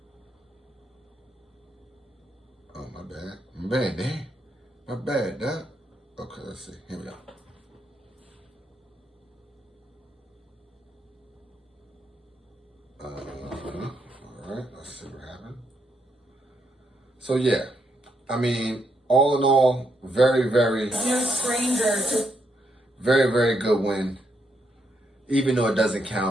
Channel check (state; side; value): normal; both; correlation 0.78